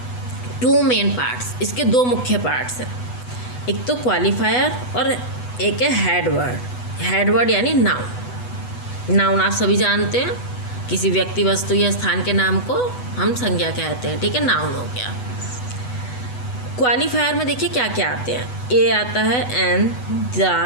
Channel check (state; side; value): late; right; 8.1 ms